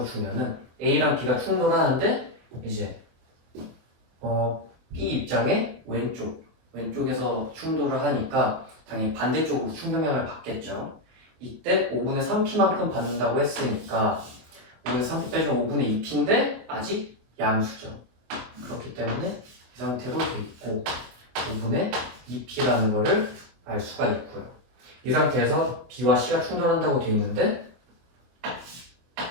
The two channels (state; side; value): late; left; 24 ms